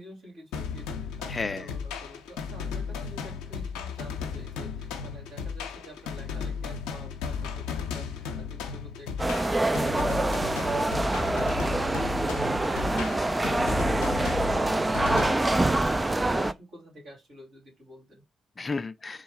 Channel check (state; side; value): normal; both; correlation 0.86